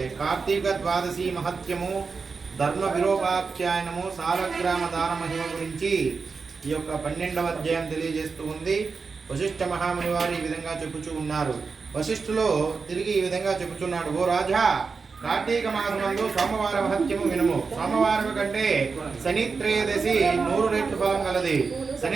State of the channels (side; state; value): left; quieter; 4.9 dB